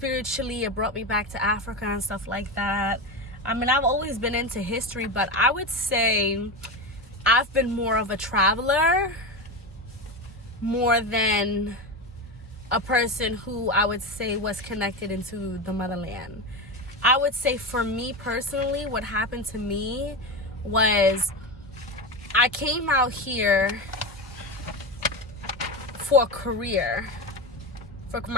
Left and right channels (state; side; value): normal; both; correlation 0.19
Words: it brought me back to Africa and stuff like that. I mean, I've always been into history, but I would say I've been more of a traveler more than a person who I would say was connected into the motherland. I would say for me personally, what happened to me was I came out here for a career, for